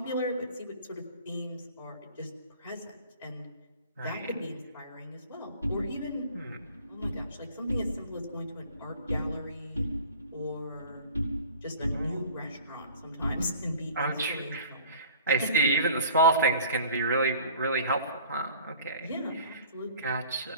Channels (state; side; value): inverted; both; correlation -0.47